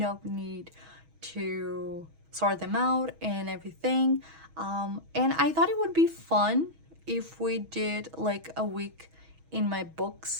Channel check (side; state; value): left; late; 6.2 ms